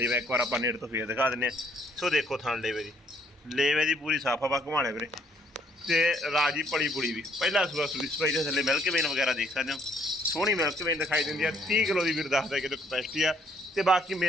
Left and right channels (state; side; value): normal; both; correlation 0.66